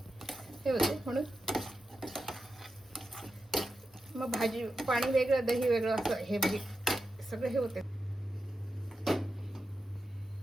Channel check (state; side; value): normal; both; correlation 0.89